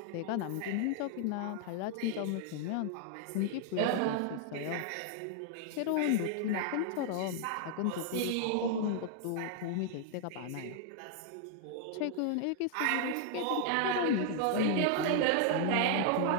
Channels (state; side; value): different; both; correlation 0.00